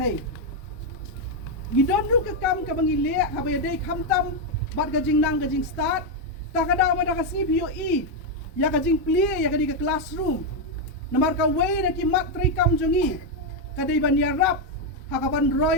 gidon ru ka kam ka bangile ka bayadai kamtam bat ka jing nang ka jing start ta ka daw da ka CPOE ya ka jing plie ya ka di ka classroom namar ka way na ki mat tray kam jongi ka dai ban ya rap ha ka ban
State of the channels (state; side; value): normal; both; correlation 0.02